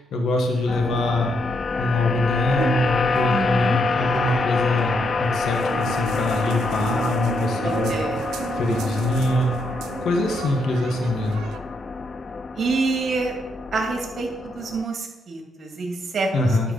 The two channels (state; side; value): normal; both; correlation 0.78